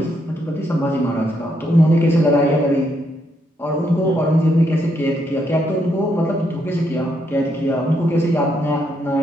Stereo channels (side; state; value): both; normal; correlation 0.76